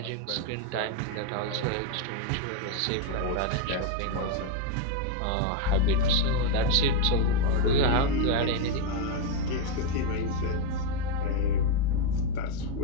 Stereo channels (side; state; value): both; different; correlation 0.01